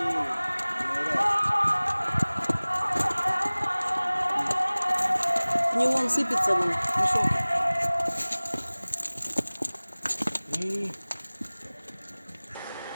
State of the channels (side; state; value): both; inverted; correlation -1.00